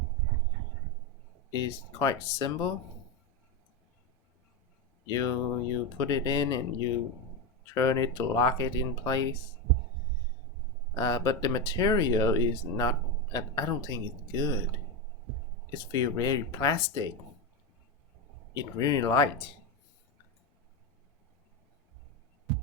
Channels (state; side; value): normal; both; correlation 0.12